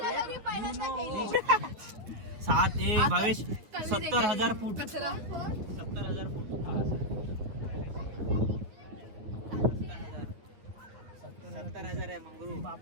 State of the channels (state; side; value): late; left; 9.2 ms